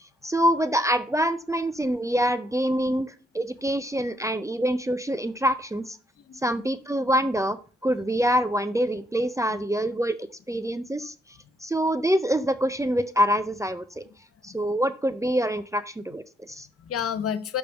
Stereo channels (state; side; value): normal; both; correlation 0.74